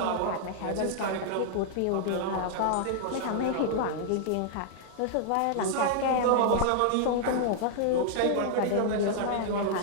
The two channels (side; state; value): both; different; correlation -0.01